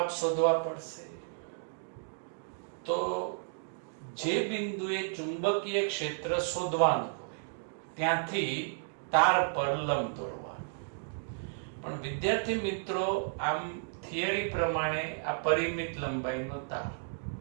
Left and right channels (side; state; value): left; silent; digital silence